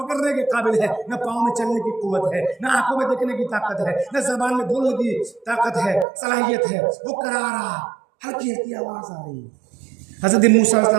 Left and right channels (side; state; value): left; drops out; at 6.1 s